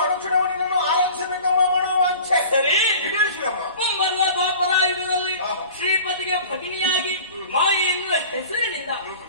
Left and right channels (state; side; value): inverted; both; correlation -0.42